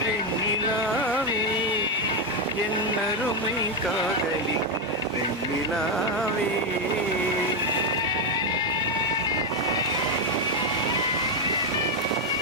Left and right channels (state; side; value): normal; both; correlation 0.05